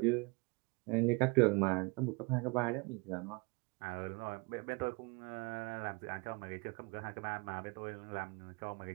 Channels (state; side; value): quieter; left; 28.6 dB